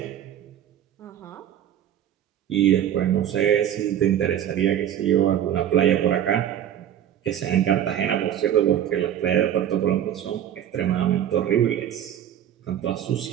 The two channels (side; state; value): left; quieter; 10.4 dB